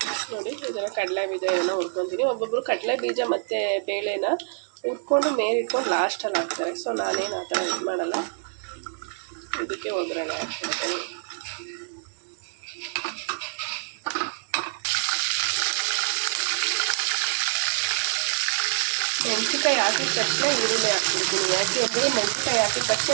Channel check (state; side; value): silent; left; digital silence